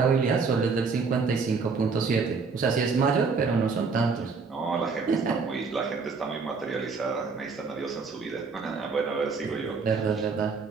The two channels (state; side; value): quieter; left; 4.8 dB